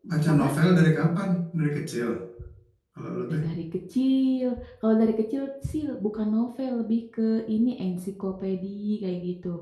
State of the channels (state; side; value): identical; both; correlation 1.00